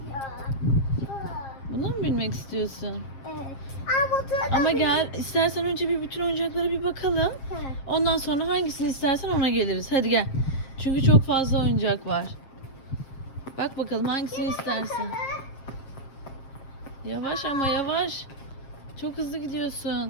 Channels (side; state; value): right; late; 7.4 ms